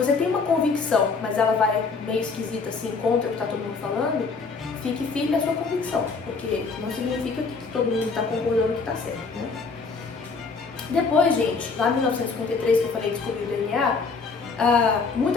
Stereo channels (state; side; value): quieter; right; 4.6 dB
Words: tem uma convicção, mas ela vai meio esquisita assim, contra o que está todo mundo falando, fique firme na sua convicção, porque não significa que todo mundo está concordando que está certo, né? Depois, gente, lá em 1953, que eu falei descobrir o DNA,